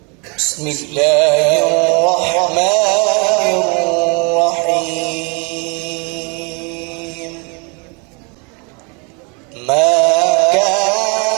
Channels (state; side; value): quieter; left; 32.6 dB